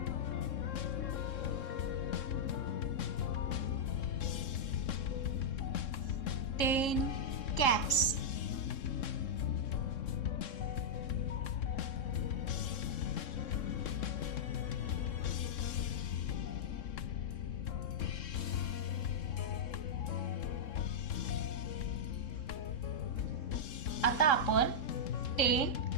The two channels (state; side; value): late; right; 3.7 ms